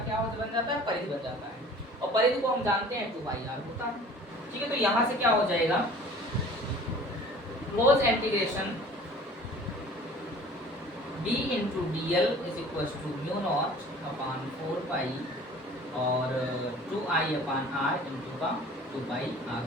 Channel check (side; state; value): both; normal; correlation 0.47